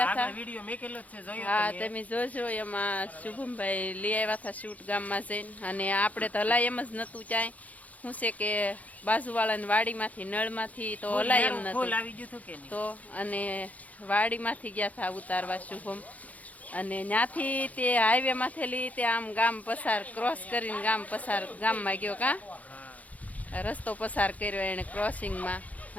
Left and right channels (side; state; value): right; late; 0.073 ms